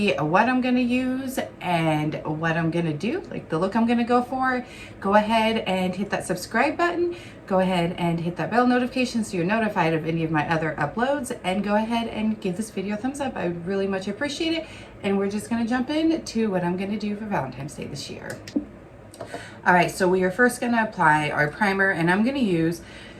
what I'm going to use and what I'm going to do, like the look I'm going to go for, go ahead and hit that subscribe button. Go ahead and hit that bell notification so you're notified of any of my other uploads, and go ahead and give this video a thumbs up. I would really much appreciate it. And we're just going to jump into what I'm going to do for Valentine's Day this year. All right, so we are first going to apply our primer, and I'm going to use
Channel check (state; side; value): identical; both; correlation 1.00